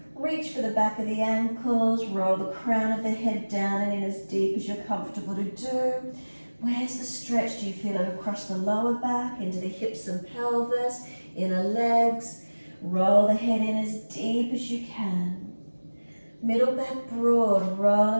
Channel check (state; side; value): inverted; both; correlation -1.00